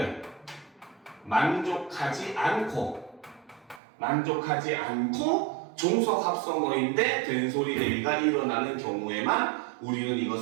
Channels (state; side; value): drops out; left; at 3.8 s